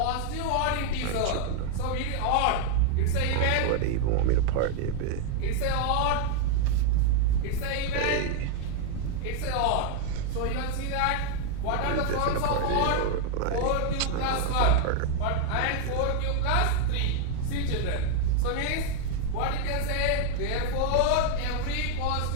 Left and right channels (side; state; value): both; different; correlation 0.00